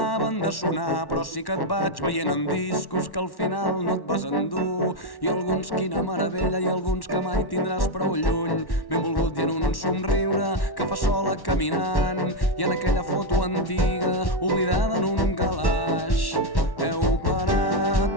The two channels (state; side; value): late; right; 1.1 ms